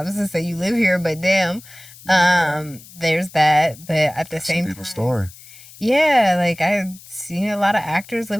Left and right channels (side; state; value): left; noise; hiss, 20 dB below the sound